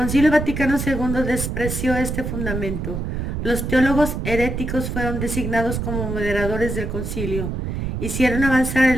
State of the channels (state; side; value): noise; right; rumble, 3 dB below the sound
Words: Vaticano II despreció este fundamento. Los teólogos heréticos fueron designados como moderadores del concilio. Hicieron avanzar